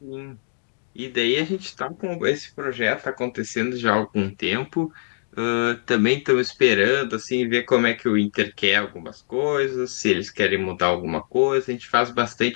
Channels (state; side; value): silent; right; digital silence